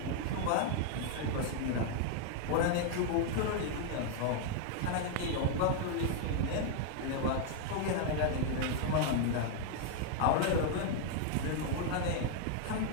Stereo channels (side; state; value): both; different; correlation 0.00